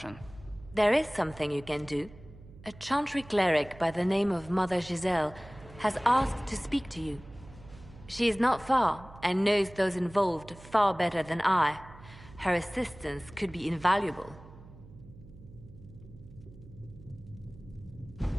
There is something you can do. A Chantry cleric by the name of Mother Giselle has asked to speak to you. She is not far and knows those involved far better than I. Her assistance could be invaluable.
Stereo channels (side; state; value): right; noise; hum, 19 dB below the sound